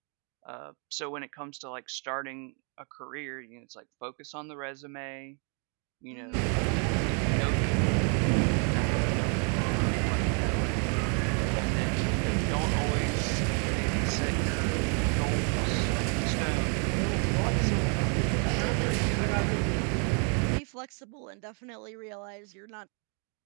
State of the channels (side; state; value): left; quieter; 39.4 dB